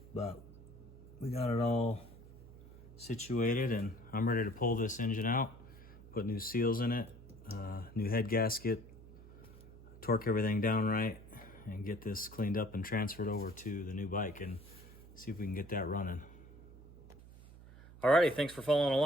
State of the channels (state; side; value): noise; right; hum, 19 dB below the sound